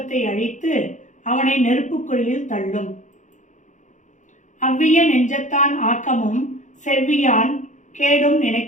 அழித்து அவனை நெருப்புக்குழியில் தள்ளும். அவ்விய நெஞ்சத்தான் ஆக்கமும் செவ்வியான் கேடும்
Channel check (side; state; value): right; late; 0.36 ms